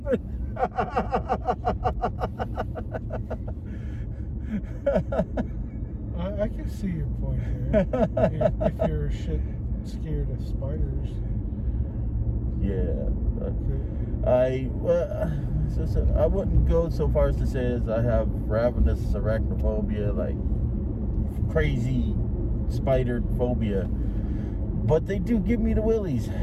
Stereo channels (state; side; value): identical; both; correlation 1.00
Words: I can see your point there. if you're shit scared of spiders. Yeah. Okay. I wouldn't go so far as to say as I have ravenous arachnophobia, like crazy spider phobia, but they do give me the willies.